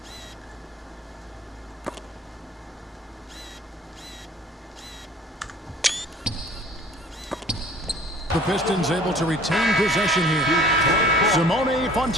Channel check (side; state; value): both; normal; correlation 0.51